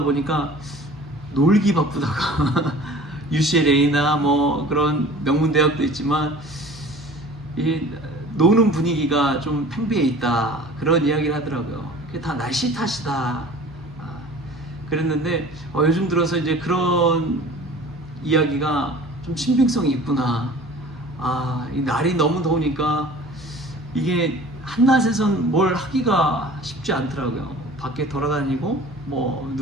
보니까 놀기 바쁘다가 UCLA나 뭐 그런 명문 대학도 있지만 이 노는 분위기가 좀 팽배해 있다, 그런 이야기를 하더라고요. 그게 다 날씨 탓이다 그랬는데 요즘 들어서 이제 그런 이야기가 좀 신빙성이 있구나. 이 날이 너무 더우니까 이게 한낮에선 뭘 하기가 쉽지 않더라고요. 밖에 돌아다니고 뭐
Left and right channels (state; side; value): normal; both; correlation 0.45